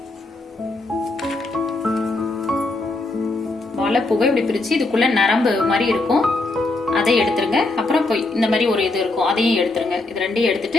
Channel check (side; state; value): right; quieter; 3.1 dB